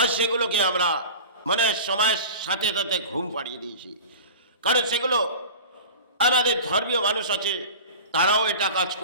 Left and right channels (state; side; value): inverted; both; correlation -0.35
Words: সেগুলোকে আমরা মানে সময়ের সাথে সাথে ঘুম পাড়িয়ে দিয়েছি। কারণ সেগুলো আমাদের ধর্মীয় মানুষ আছে, তারাও এটা কাজ